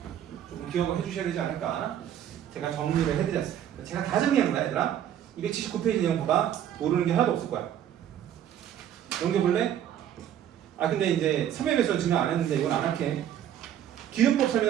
조금 기억을 해주셔야 되지 않을까. 제가 정리를 해드렸어요. 제가 다 정리한 거야 얘들아. 279페이지 내용 봐봐. 모르는 게 하나도 없을 거야. 넘겨볼래? 근데 이제 3회 배수는 증명 안 했는데 이건 안 할게. 기류법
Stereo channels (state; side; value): quieter; left; 10.5 dB